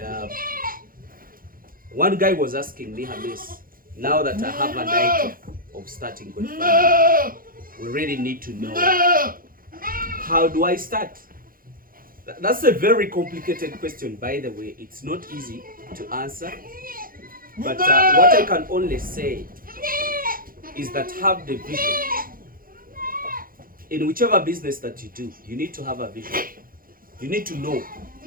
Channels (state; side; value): late; left; 0.41 ms